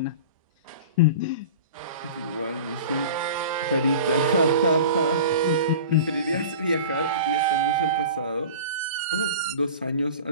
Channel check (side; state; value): both; inverted; correlation -0.37